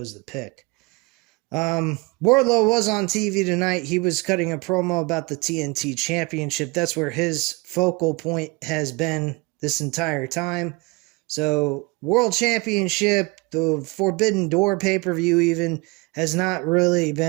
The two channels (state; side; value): quieter; left; 26.0 dB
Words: the pick. Wardlow was on TV tonight. He was cutting a promo about the TNT Championship. That's where his focal point has been this entire time. So, World Championship, the Forbidden Door pay-per-view even, has not really